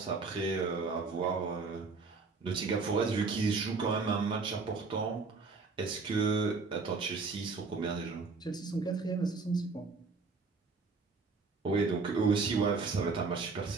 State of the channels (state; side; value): quieter; left; 4.3 dB